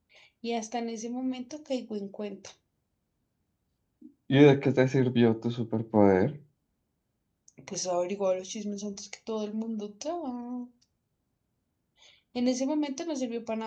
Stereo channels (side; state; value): both; identical; correlation 1.00